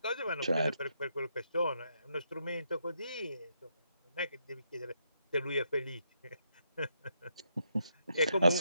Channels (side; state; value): both; inverted; correlation -0.79